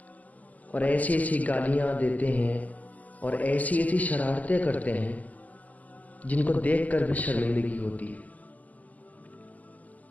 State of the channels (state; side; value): late; right; 0.077 ms